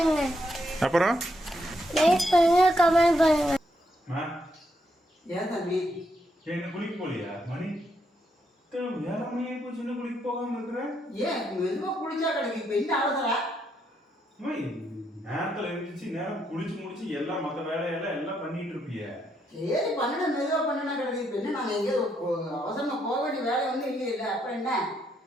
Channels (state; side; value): normal; both; correlation 0.77